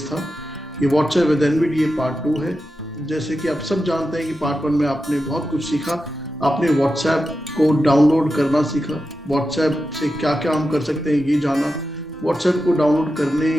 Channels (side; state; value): both; normal; correlation 0.90